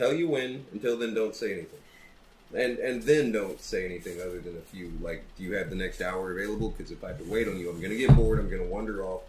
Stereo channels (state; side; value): identical; both; correlation 1.00